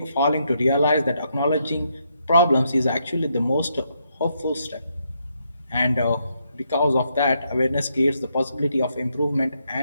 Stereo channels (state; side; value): inverted; both; correlation -0.77